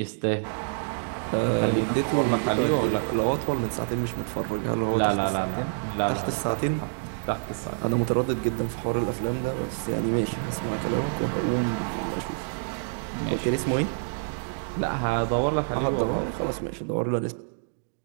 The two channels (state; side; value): silent; left; digital silence